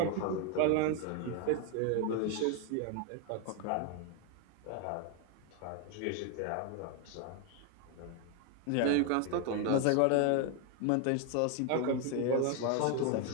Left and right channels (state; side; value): different; both; correlation 0.01